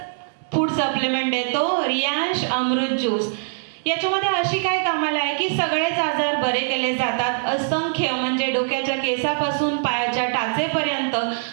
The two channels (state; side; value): silent; left; 60 dB below the other